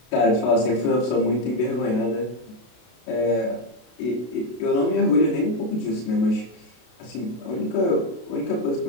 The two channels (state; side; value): late; right; 32 ms